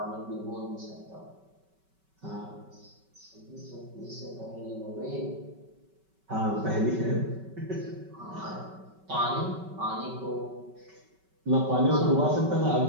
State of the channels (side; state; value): left; late; 5.2 ms